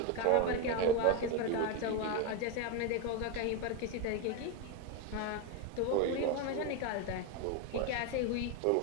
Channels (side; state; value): both; different; correlation 0.03